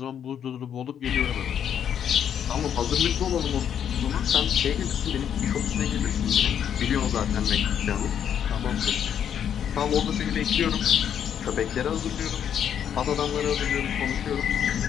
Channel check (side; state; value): right; quieter; 8.9 dB